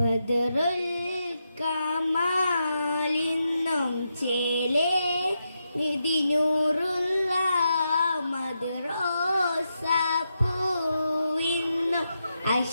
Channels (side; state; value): both; inverted; correlation -0.85